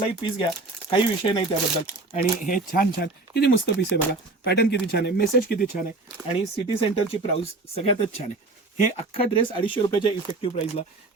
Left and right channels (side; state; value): left; quieter; 3.2 dB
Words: पीस घ्या, काही विषय नाही त्याबद्दल. आणि हे छान छान किती मस्त पीस आहे बघा, पॅटर्न किती छान आहे, मेसेज किती छान आहे. आणि सिटी सेंटरची प्राइस सगळ्यातच छान आहे. हे अख्खा ड्रेस 250 रुपयाच्या इफेक्टिव्ह प्राइसला.